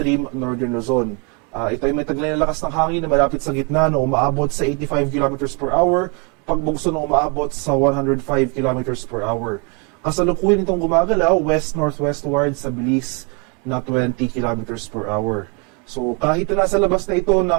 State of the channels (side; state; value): left; quieter; 34.0 dB